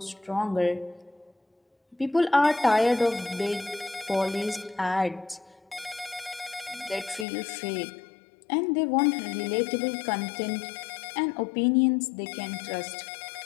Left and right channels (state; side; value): drops out; right; at 7.2 s